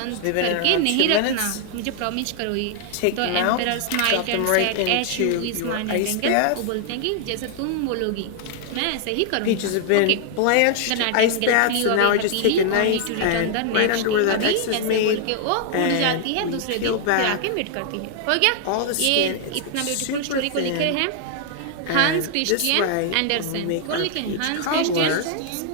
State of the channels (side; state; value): both; different; correlation 0.00